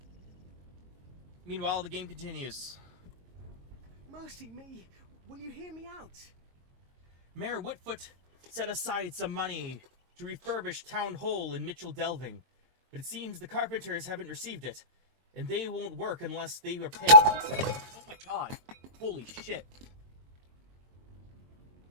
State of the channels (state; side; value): late; left; 22 ms